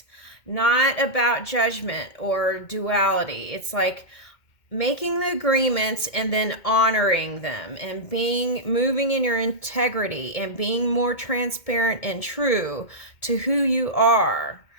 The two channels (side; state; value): right; late; 2.2 ms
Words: not about judgment or duality. It's like making the agreements and then honoring them and moving in your integrity and being more transparent and true to who you are.